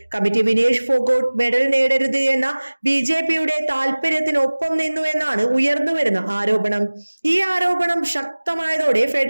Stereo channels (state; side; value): inverted; both; correlation -1.00